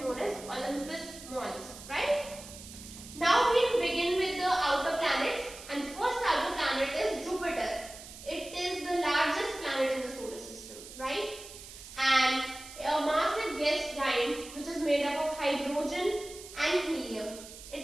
known as Olympus Mons, right? Now we begin with the outer planets, and the first outer planet is Jupiter. It is the largest planet in the solar system, right? And a massive gas giant which is made up of hydrogen and helium. It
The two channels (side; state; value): right; noise; hiss, 15 dB below the sound